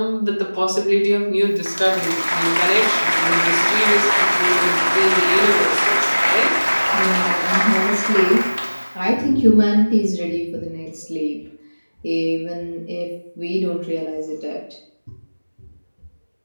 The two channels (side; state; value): both; inverted; correlation -1.00